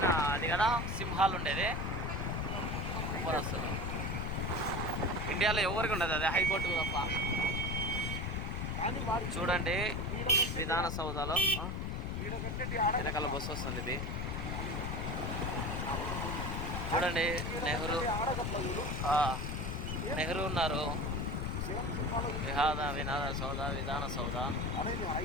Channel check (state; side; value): noise; left; rumble, 2 dB below the sound